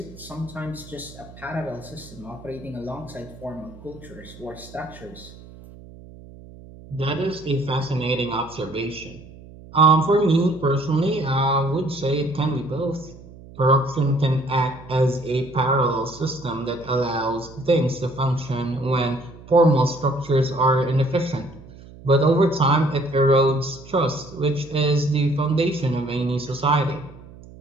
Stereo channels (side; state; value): right; noise; hum, 19 dB below the sound